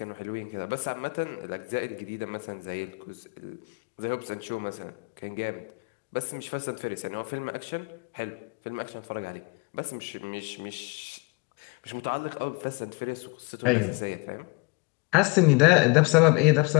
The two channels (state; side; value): quieter; right; 29.6 dB